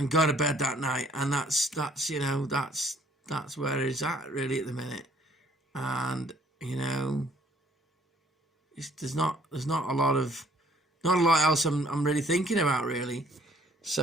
go to bed that night. And that's that's where it's at really at the minute. And you know, there's not a lot else I'm really thinking about really.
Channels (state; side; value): normal; both; correlation 0.61